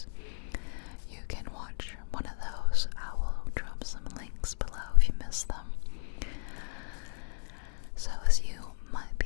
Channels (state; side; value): silent; right; digital silence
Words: you can watch one of those. I will drop some links below if you miss them. So as you might